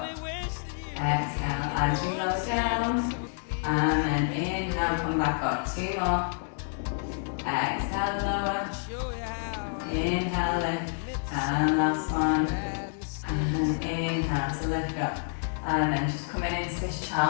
Exhale as you lower down, and then inhale, come back up. 2 more. Exhale, lower. Inhale, lift. And last 1. And inhale to lift up. And then just coming into this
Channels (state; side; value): silent; right; digital silence